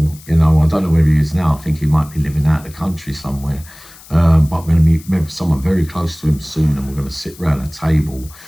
you know, I don't know where he is now. I think he might be living out of the country somewhere. But we're going to meet maybe someone very close to him soon, and we're going to sit around a table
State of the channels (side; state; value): left; noise; hiss, 21 dB below the sound